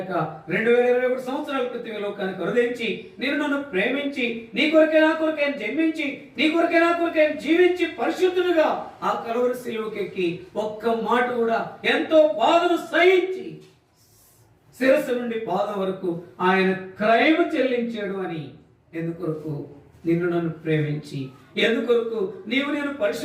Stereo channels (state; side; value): identical; both; correlation 1.00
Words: 2021 సంవత్సరాల క్రితం లోకానికి కరుదించి నేను నన్ను ప్రేమించి నీ కొరకే నా కొరకే ఆయన జన్మించి నీ కొరకే నా కొరకే ఆయన జీవించి పరిశుద్ధుడుగా ఆ కలువరి సిలువకెక్కి ఒక్క మాట కూడా ఎంతో బాధను సహించి శిరస్సు నుండి పాదం వరకు ఆయన క్రయము చెల్లించాడు అని. ఎందుకొరకు? నిన్ను నన్ను ప్రేమించి, ఎందుకొరకు నీవు నేను